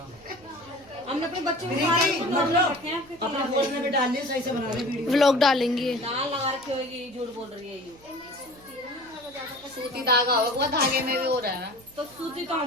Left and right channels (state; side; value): noise; right; hum, 25 dB below the sound